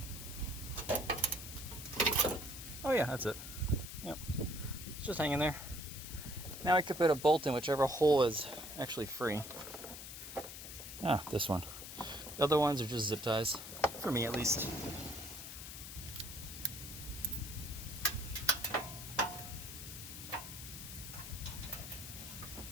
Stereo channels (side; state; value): left; noise; hiss, 10 dB below the sound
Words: Oh yeah, that's it. Yep. It's just hanging there. Now I could put a bolt in whichever hole is actually free. Ah, this one. The other ones are just zip ties. For me, at least.